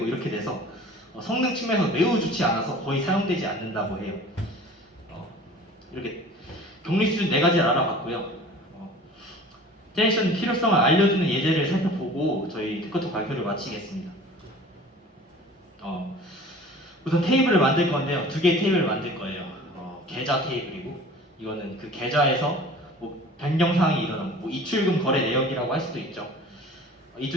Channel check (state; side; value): normal; both; correlation 0.44